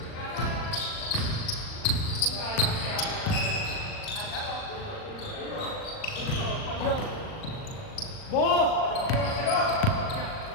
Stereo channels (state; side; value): late; right; 39 ms